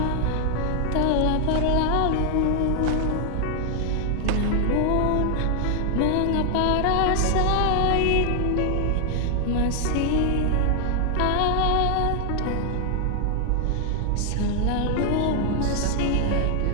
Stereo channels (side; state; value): both; different; correlation 0.00